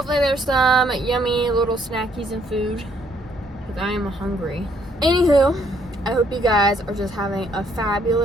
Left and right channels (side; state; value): both; normal; correlation 0.68